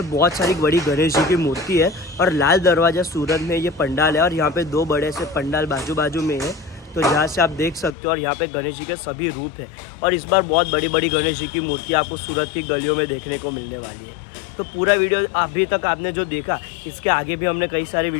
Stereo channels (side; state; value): right; drops out; at 8.0 s